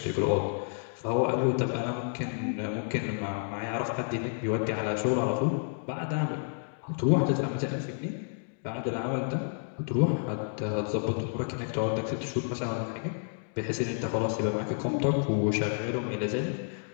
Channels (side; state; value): right; silent; 58 dB below the other